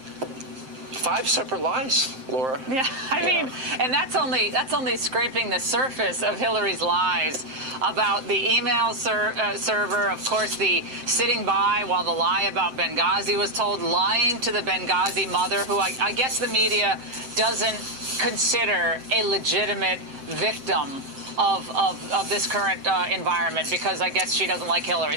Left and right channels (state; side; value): late; left; 7.7 ms